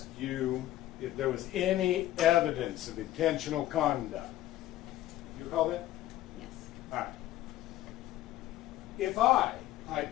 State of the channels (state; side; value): quieter; right; 14.4 dB